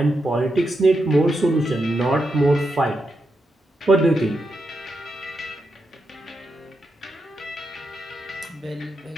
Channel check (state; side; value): normal; both; correlation 0.85